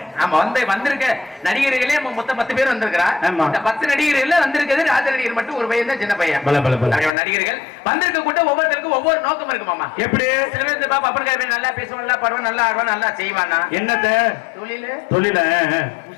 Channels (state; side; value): drops out; right; at 7.1 s